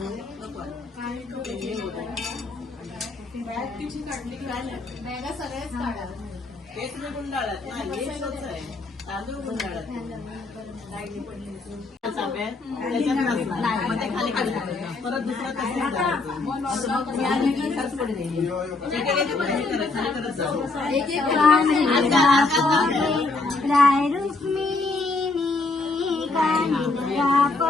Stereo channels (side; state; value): right; quieter; 3.5 dB